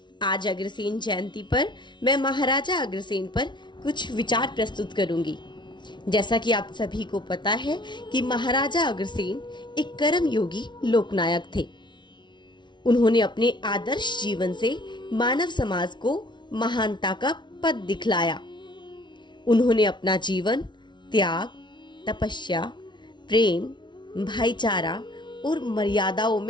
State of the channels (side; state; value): right; late; 0.22 ms